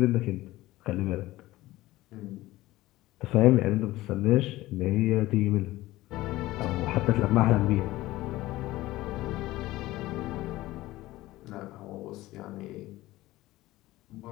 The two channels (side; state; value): right; quieter; 17.4 dB